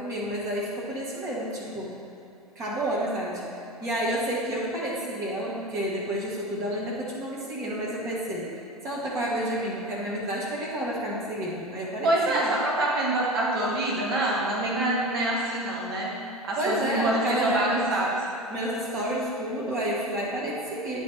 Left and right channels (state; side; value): normal; both; correlation 0.32